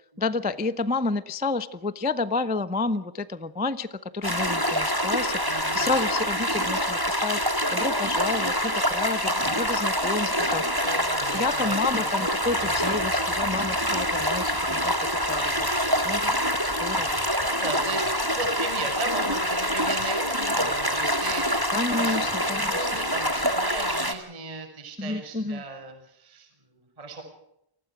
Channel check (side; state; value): left; late; 1.1 ms